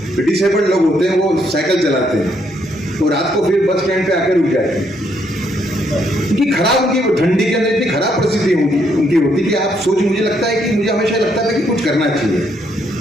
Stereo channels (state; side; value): normal; both; correlation 0.73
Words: डिसेबल्ड लोग होते हैं वो साइकिल चलाते हैं तो रात को फिर बस स्टैंड पे आकर रुक जाते हैं. उनकी खराब, उनकी ठंडी के अंदर इतनी खराब परिस्थिति उनकी होती कि आप मुझे लगता है कि मुझे हमेशा लगता था कि कुछ करना चाहिए,